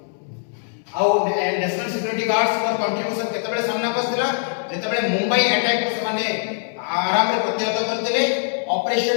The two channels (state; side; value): silent; right; 64 dB below the other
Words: आउ नेशनल सिक्योरिटी गार्ड्स पर कंट्रीब्यूशन केतबेले सामना पस्तिला जेतबेले मुंबई अटैक को माने आराम रे प्रतिहत करथिले